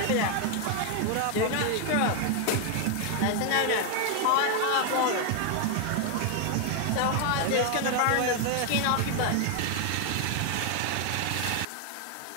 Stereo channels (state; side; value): different; both; correlation 0.00